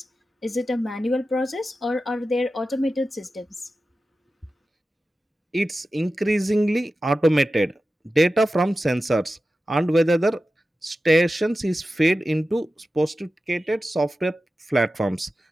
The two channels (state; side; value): normal; both; correlation 0.93